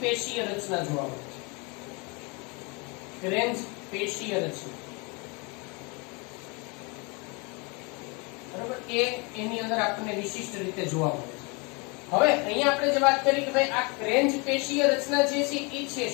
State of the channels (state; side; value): quieter; right; 30.0 dB